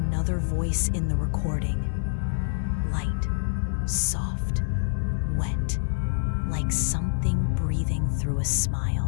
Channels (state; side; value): silent; right; digital silence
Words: voice in the recording. Light, soft, wet, like something breathing through a